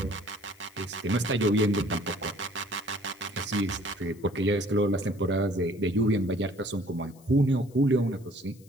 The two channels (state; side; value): noise; left; hiss, 27 dB below the sound